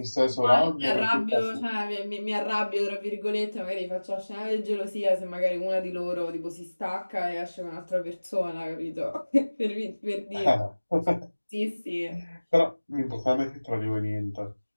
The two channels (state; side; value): inverted; both; correlation -1.00